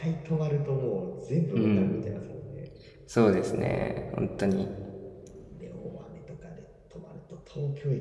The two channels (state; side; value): identical; both; correlation 1.00